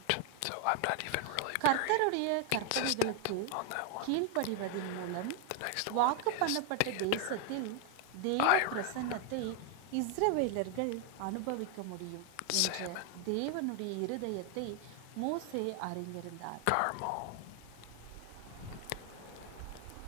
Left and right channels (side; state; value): both; different; correlation 0.00